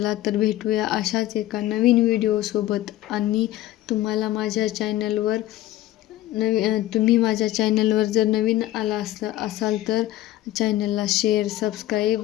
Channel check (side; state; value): right; quieter; 14.9 dB